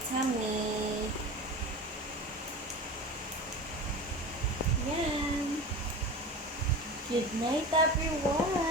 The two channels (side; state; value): both; normal; correlation 0.31